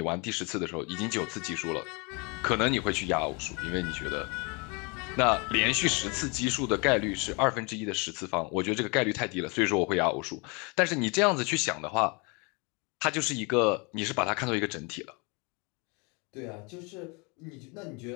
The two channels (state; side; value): quieter; right; 30.7 dB